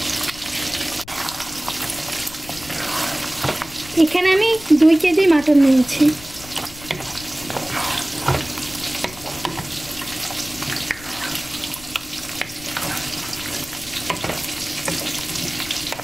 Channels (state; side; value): noise; left; rumble, 18 dB below the sound